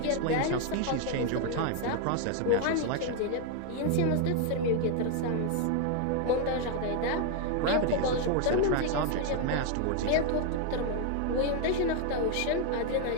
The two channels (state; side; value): different; both; correlation 0.00